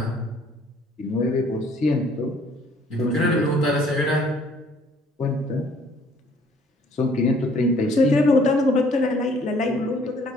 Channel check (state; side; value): normal; both; correlation 0.59